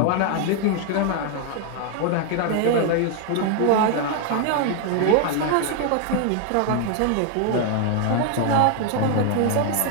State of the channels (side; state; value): both; different; correlation 0.01